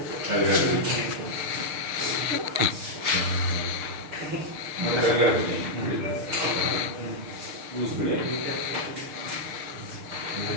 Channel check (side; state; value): left; late; 6.6 ms